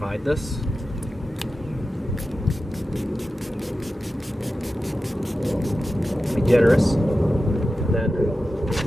this. Be generous. And then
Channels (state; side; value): normal; both; correlation 0.93